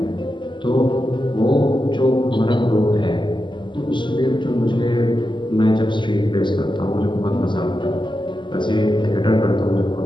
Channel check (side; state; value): right; late; 0.23 ms